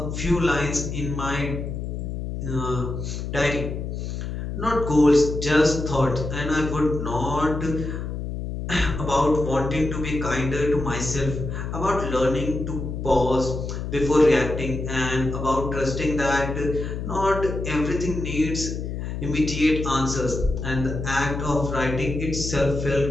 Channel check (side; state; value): left; noise; hum, 5 dB below the sound